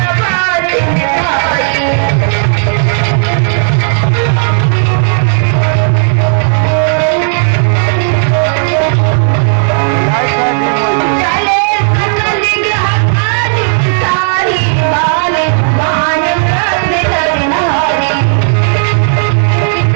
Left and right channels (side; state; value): left; silent; digital silence